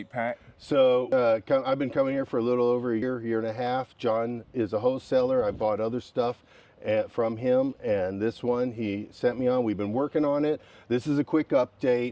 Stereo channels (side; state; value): both; identical; correlation 1.00